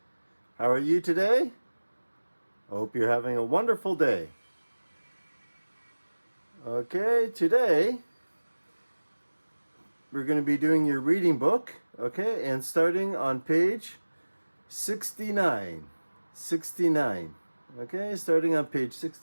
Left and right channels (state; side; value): inverted; both; correlation -1.00